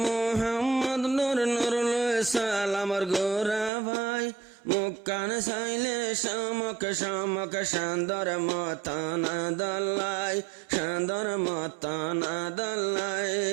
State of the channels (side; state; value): left; drops out; at 3.7 s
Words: মোহাম্মদ নূর নুরুল সালামর গোরা ভাই মুক্কান সাইলে শামক শামক শান্দর মতানা দল্লাই শান্দর মতানা দল্লাই